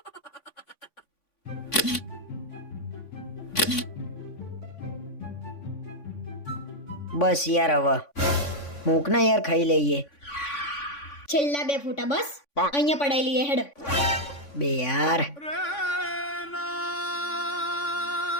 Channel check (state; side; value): late; right; 3.5 ms